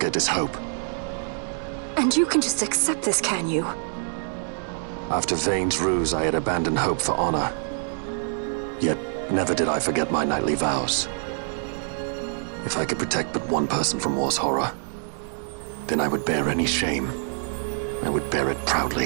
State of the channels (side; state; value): left; silent; 61 dB below the other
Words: it is hope. And you can just accept this, can you? After Vane's ruse, I had abandoned hope for honor. Yet, never did I forget my knightly vows. If I could protect but one person from war's horror, then I would bear any shame. I would bear it